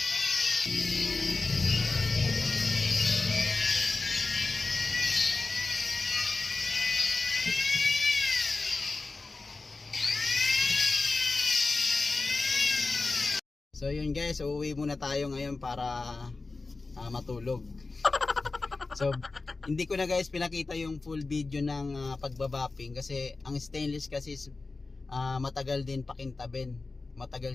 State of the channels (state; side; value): quieter; right; 3.7 dB